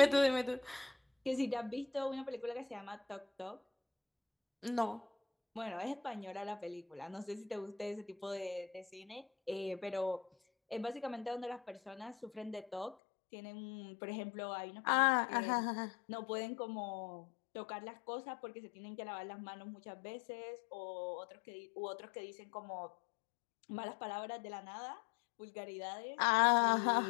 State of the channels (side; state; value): right; drops out; at 13.0 s